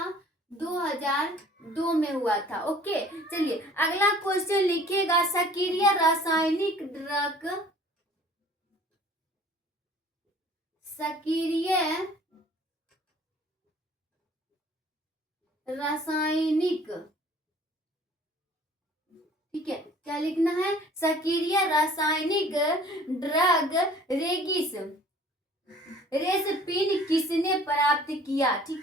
2002 में हुआ था। ओके चलिए अगला क्वेश्चन लिखिएगा सक्रिय रासायनिक ड्रग, सक्रिय रासायनिक, ठीक है। क्या लिखना है, सक्रिय रासायनिक ड्रग रेगिस रेसपिन किसने प्राप्त किया,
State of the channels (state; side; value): normal; both; correlation 0.51